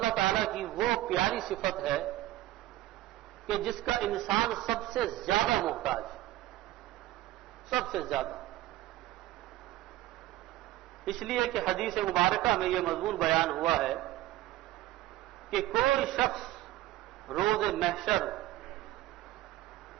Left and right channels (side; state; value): left; quieter; 15.8 dB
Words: تعالیٰ کی وہ پیاری صفت ہے کہ جس کا انسان سب سے زیادہ محتاج ہے، سب سے زیادہ۔ اس لیے کہ حدیث مبارکہ میں یہ مضمون بیان ہوا ہے کہ کوئی شخص روز محشر